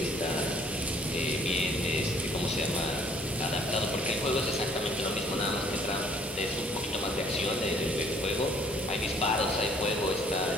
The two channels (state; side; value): normal; both; correlation 0.60